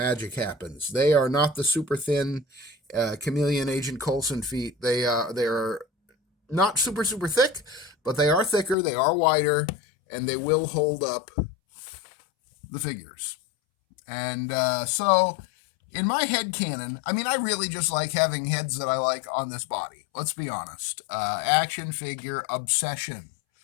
happens. They are not the super thin Chameleon Agent Coulson feet. They are not super thick, but they are thicker, they are wider, and they will hold up the figures. And so in my head canon, I mean, I really just like having heads that I like on this body. Let's be honest. Action figure obsession.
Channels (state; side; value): drops out; right; at 8.8 s